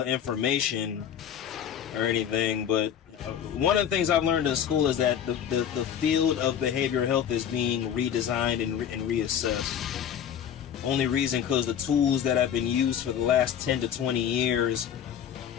information or anything, but one of the things I've learned in school is that the field of behavioral health is being redesigned and reassessed. Only reason because the tools that have been used for the last 10 to 20 years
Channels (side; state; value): right; quieter; 9.0 dB